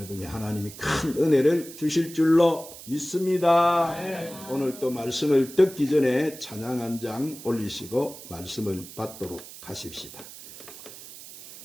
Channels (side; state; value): right; noise; hiss, 15 dB below the sound